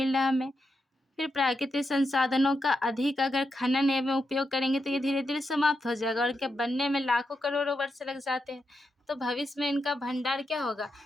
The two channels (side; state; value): both; normal; correlation 0.85